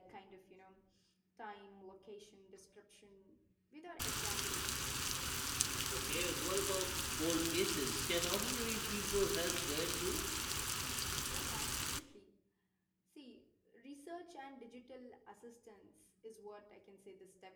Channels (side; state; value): both; identical; correlation 1.00